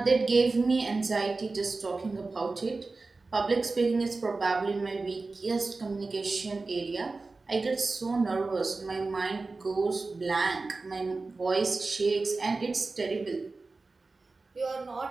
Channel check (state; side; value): quieter; left; 3.7 dB